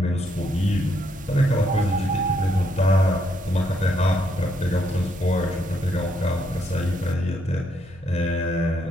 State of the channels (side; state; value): left; noise; hum, 23 dB below the sound